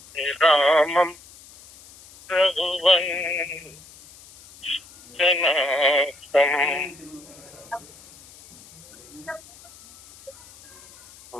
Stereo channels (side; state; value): left; noise; hiss, 22 dB below the sound